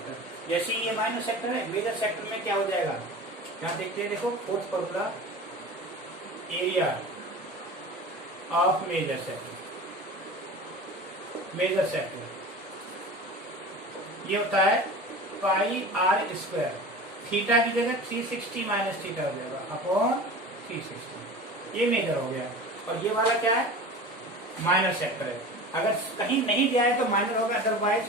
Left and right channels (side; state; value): both; normal; correlation 0.35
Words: जैसे ये माइनर सेक्टर है, मेजर सेक्टर में क्या हो जाएगा, यहाँ देखते हैं, देखो fourth formula, area of major sector ये होता है पाई आर स्क्वायर, थीटा की जगह 360 माइनस थीटा हो जाएगा अपॉन 360, ये मेजर हो गया। और ये वाला क्या है, माइनर सेक्टर है। अगर कहीं नहीं दिया है तो माइनर होगा, अदरवाइज